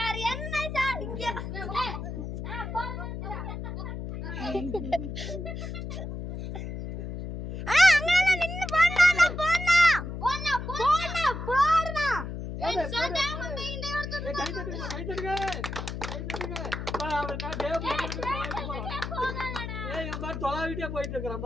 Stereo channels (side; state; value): left; noise; hum, 6 dB below the sound